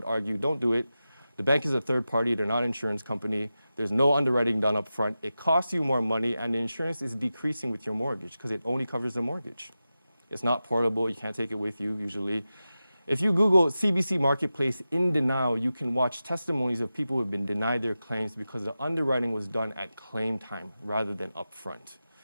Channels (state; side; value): inverted; both; correlation -0.93